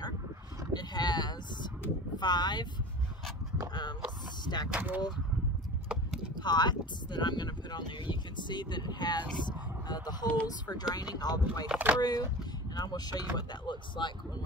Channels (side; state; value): both; normal; correlation 0.35